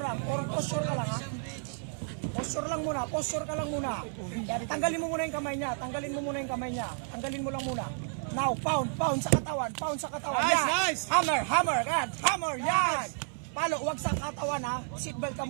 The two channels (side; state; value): left; silent; 56 dB below the other